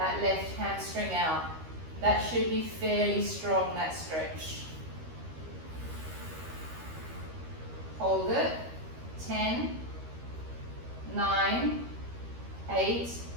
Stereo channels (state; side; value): late; left; 13 ms